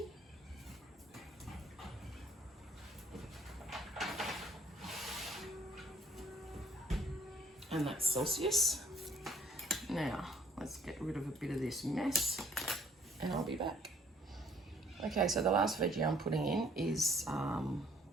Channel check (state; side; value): normal; both; correlation 0.60